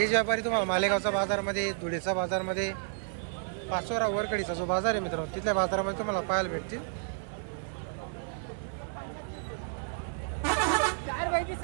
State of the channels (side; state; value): left; silent; 57 dB below the other